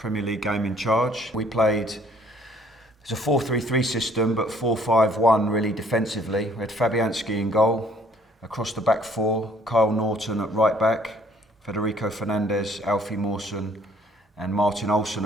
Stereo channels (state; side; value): normal; both; correlation 0.60